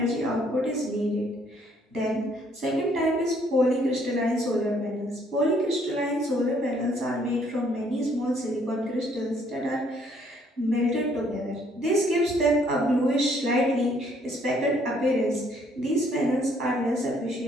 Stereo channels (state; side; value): normal; both; correlation 0.65